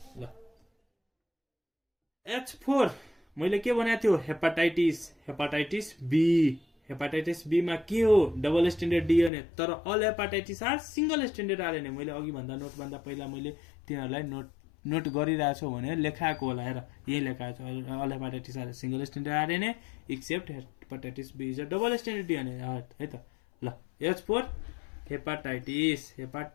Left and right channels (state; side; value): drops out; right; at 9.3 s